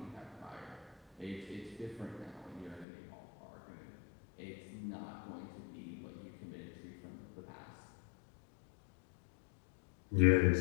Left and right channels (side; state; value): right; drops out; at 2.9 s